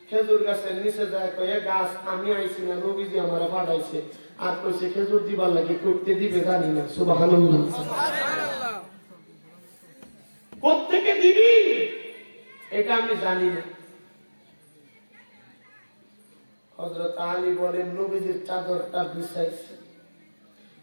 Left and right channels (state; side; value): inverted; both; correlation -1.00